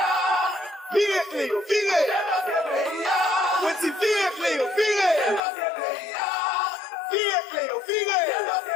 Virez Cléo, virez. Petit virez Cléo, virez. Virez Cléo, virez.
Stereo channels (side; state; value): right; drops out; at 5.4 s